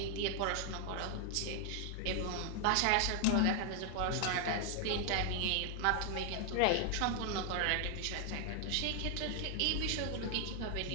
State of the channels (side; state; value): both; different; correlation 0.00